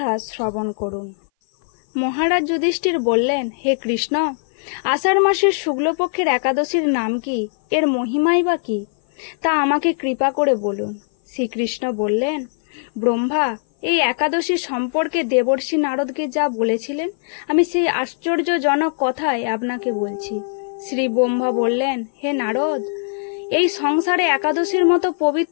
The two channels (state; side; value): silent; right; 59 dB below the other